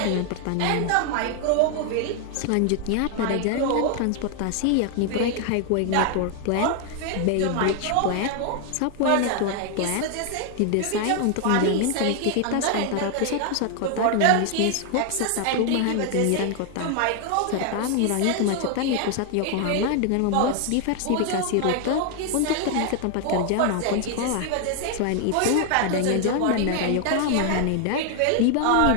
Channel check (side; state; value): both; different; correlation 0.00